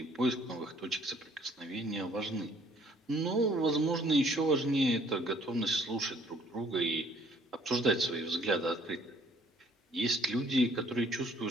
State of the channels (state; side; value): normal; both; correlation 0.60